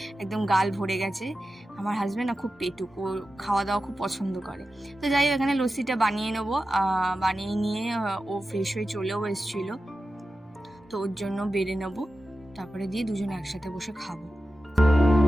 একদম গাল ভরে গেছে। আমার হাজব্যান্ড না খুব পেটুক, ও খাওয়া দাওয়া খুব পছন্দ করে। তো যাই হোক, এখানে লস্যিটা বানিয়ে নেবো। বানিয়ে নিয়ে ও ফ্রেশ হয়ে চলেও এসেছিলো, তো ওর জন্য বেড়ে নেবো, তারপরে দিয়ে দুজনে একসাথে বসে খাবো।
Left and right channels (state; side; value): normal; both; correlation 0.93